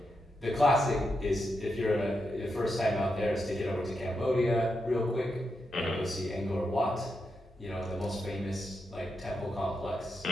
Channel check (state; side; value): normal; both; correlation 0.85